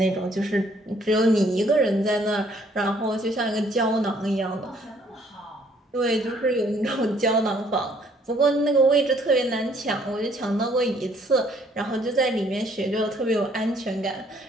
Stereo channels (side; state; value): both; normal; correlation 0.63